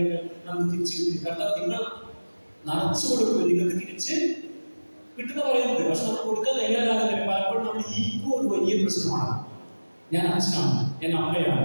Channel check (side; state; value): both; inverted; correlation -1.00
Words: നമുക്ക് തിരിച്ചു കിട്ടും. കാരണം നിങ്ങൾ നിറച്ചു കൊടുക്കും, നിങ്ങൾക്ക് തിരിച്ച് കിട്ടുന്ന പറയുന്നത്. പക്ഷെ നമ്മൾ കൊടുക്കാൻ തയ്യാറാകുന്നില്ല. പലപ്പോഴും നമ്മുടെ ഈഗോ ഒരു വലിയ പ്രശ്നമാണ്. ഞാൻ അച്ഛനാണ്, ഞാൻ